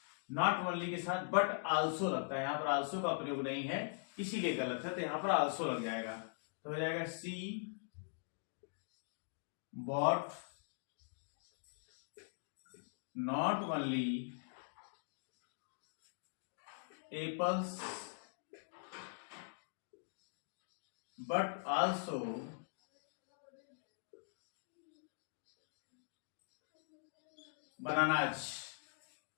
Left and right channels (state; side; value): silent; right; digital silence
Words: not only के साथ but also लगता है, यहाँ पर also का प्रयोग नहीं है इसीलिए गलत है, तो यहाँ पर also लग जाएगा। तो हो जाएगा she bought not only apples but also bananas।